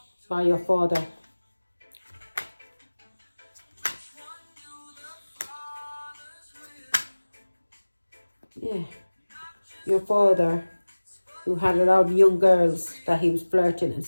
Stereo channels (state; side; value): inverted; both; correlation -1.00